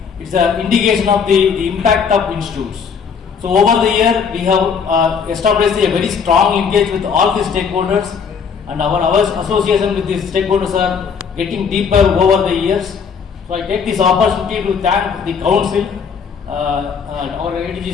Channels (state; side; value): quieter; right; 6.3 dB